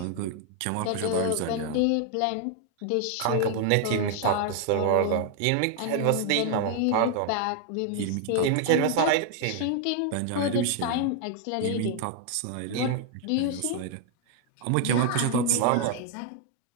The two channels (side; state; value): both; different; correlation 0.00